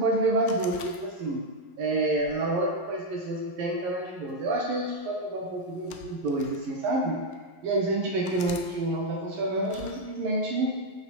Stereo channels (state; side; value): late; left; 11 ms